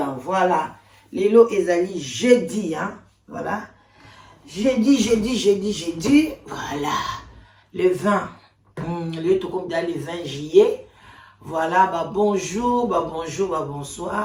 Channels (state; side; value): identical; both; correlation 1.00